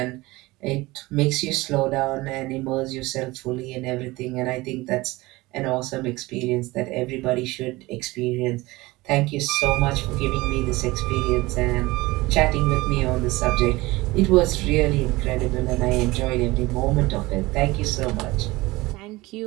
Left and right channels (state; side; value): quieter; left; 20.8 dB